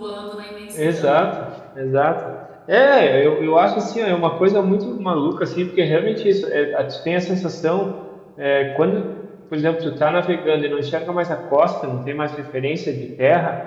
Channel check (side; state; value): both; identical; correlation 1.00